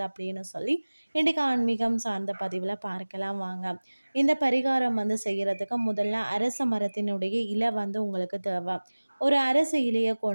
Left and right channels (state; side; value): inverted; both; correlation -1.00